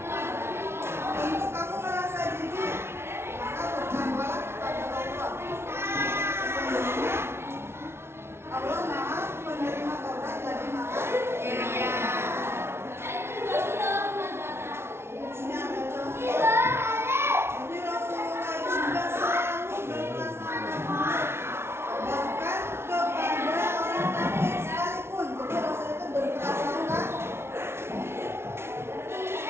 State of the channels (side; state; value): left; late; 0.12 ms